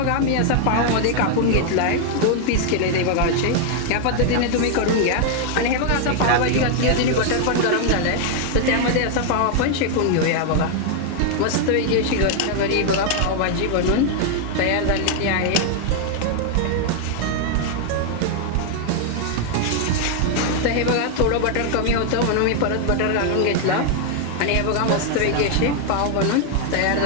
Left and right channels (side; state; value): both; different; correlation 0.00